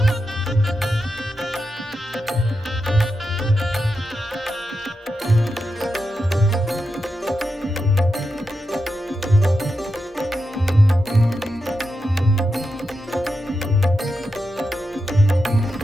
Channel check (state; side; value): normal; both; correlation 0.87